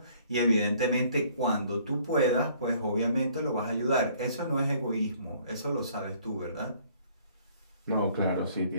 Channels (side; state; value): both; inverted; correlation -0.59